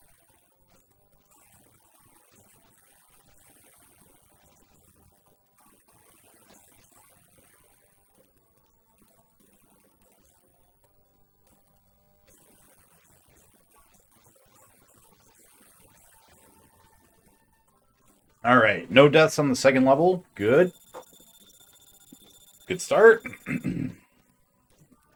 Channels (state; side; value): identical; both; correlation 1.00